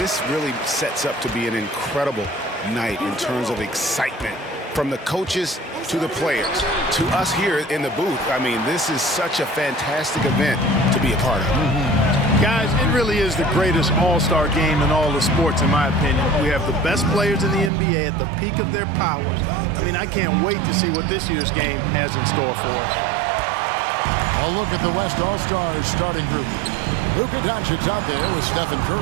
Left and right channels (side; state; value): left; drops out; at 17.7 s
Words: really sets up to be an incredible night in terms of excitement from the coaches to the players to us here in the booth. I mean, this is such a fantastic event to be a part of. Guys, it really is the greatest all-star game in all the sports, in my opinion. We have the best players in the NBA at the peak of their powers. I mean, I can't wait to see what this year's game has in store for us. A look at the West All-Stars starting group. Luka Doncic out there with Stephen